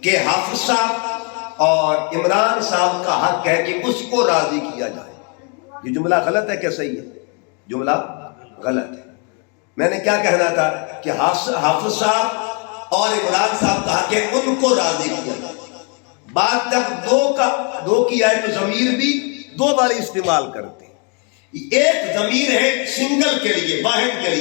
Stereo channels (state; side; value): quieter; right; 36.7 dB